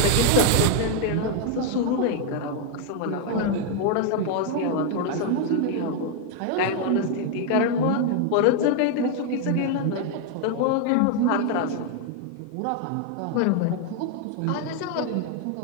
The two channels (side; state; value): both; different; correlation 0.01